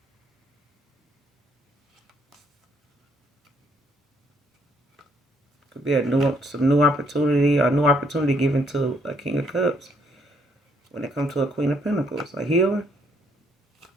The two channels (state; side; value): normal; both; correlation 0.69